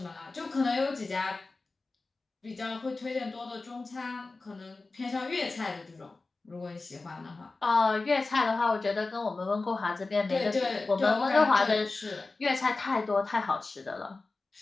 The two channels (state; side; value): quieter; right; 3.6 dB